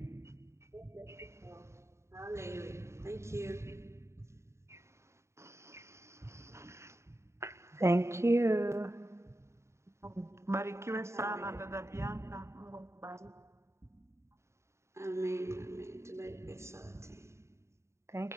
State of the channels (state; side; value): late; left; 0.14 ms